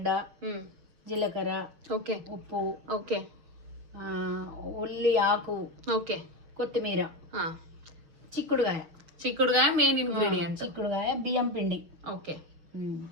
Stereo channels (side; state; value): left; late; 6.4 ms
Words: జీలకర్ర, ఓకే, ఉప్పు, ఓకే, ఉల్లి ఆకు, ఓకే, కొత్తిమీర, చిక్కుడుగాయ మెయిన్ ఇంగ్రీడియంట్. చిక్కుడుగాయ, బియ్యం పిండి. ఓకే,